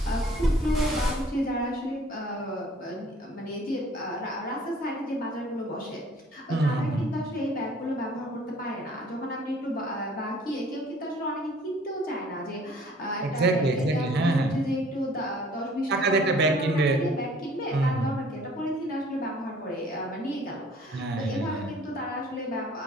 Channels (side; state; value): both; normal; correlation 0.54